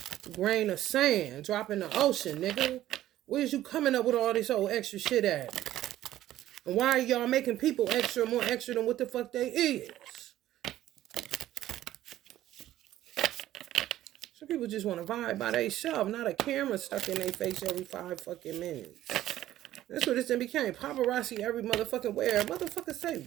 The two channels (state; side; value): quieter; left; 13.6 dB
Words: Grain of sand. Drop in the ocean, nigga. Where's you coming up with all this old extra shit at? And why are y'all making people extra, more extra than what the fuck they is? Some people just want to vibe by themselves, not a camera stuck in their face every 5 fucking minutes. That's what it became. Paparazzi every motherfucking where. Motherfuckers say